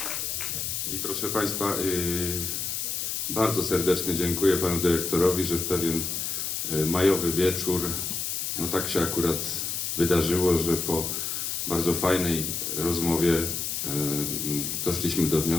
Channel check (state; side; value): noise; left; hiss, 2 dB below the sound